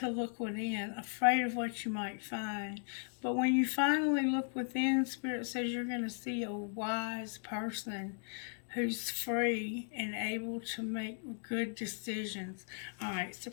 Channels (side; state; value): right; silent; 53 dB below the other